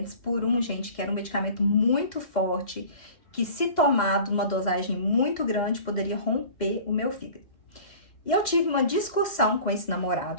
por um, gente, que era um medicamento muito forte, que se tomado numa dosagem muito grande, poderia romper o meu fígado. E eu tive uma discussão com esse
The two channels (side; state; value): right; late; 2.0 ms